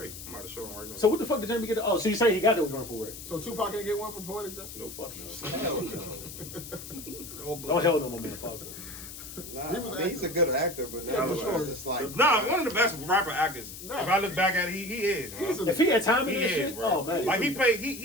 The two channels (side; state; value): left; noise; hiss, 12 dB below the sound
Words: I'm about to show him right now. So what the fuck did Jamie get? Oh, so you say he got those run for Ray? So Tupac didn't get one for Poetic Justice? No fuck no. Hell no. Don't hell no, my man. Fuck no. Nah, He was I mean, he's a good actor, but Yeah, for now sure. it's just like Nah, one of the best rapper actors. Nah. If I look back at it, he is. Bro. He's a- If he had time in He this is, shit, bro. oh man. Like he played.